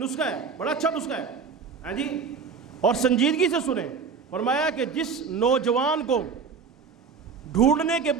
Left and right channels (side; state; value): left; quieter; 5.7 dB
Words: ہے، بڑا اچھا نسخہ ہے ہاں جی، اور سنجیدگی سے سنیں۔ فرمایا کہ جس نوجوان کو ڈھونڈنے کے